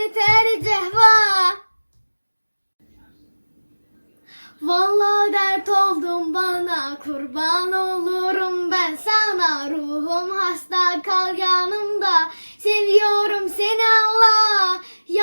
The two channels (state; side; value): inverted; both; correlation -1.00